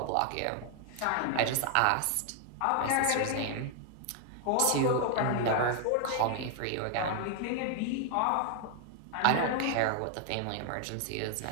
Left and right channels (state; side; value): different; both; correlation 0.00